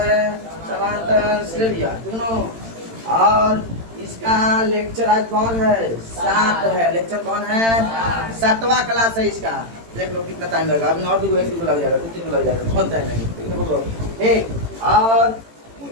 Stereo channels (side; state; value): left; late; 18 ms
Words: समांतर श्रेणियां। तीनों और इसका लेक्चर आज कौन है? 7 है। लेक्चर कौन है? 7वां क्लास है इसका। देख लो कितना टाइम लगेगा, अभी और भी 1 लग जाएगा, 2-3 लग जाएगा, बहुत टाइम लगेगा। ठीक, और